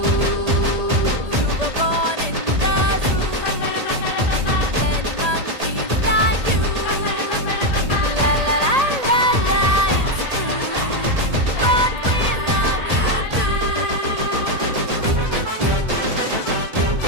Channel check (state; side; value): late; left; 1.8 ms